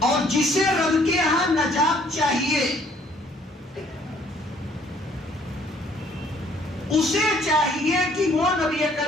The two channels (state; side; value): normal; both; correlation 0.61